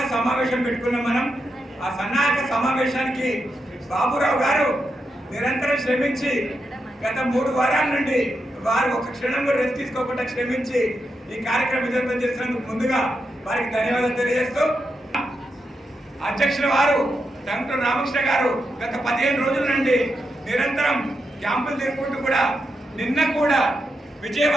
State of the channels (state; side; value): normal; both; correlation 0.85